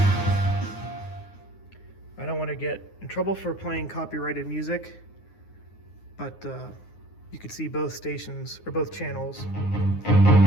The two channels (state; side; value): late; right; 9.6 ms